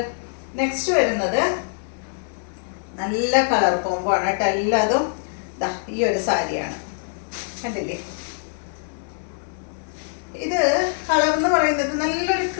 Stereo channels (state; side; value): silent; right; digital silence